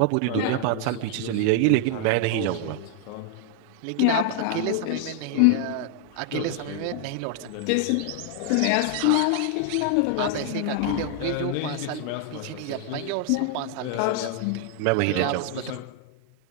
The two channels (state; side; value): different; both; correlation 0.00